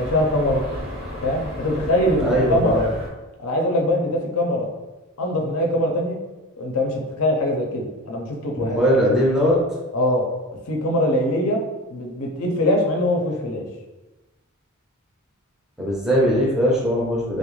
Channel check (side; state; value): both; normal; correlation 0.32